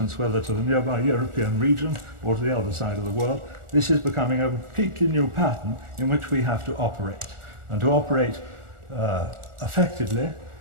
whether to the nearby European region or to the other side of the world. This is becoming a completely new pattern in which we have to operate. And to operate effectively,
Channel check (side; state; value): left; late; 1.4 ms